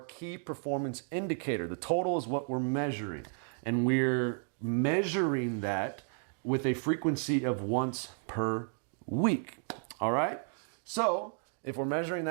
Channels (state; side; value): silent; left; 56 dB below the other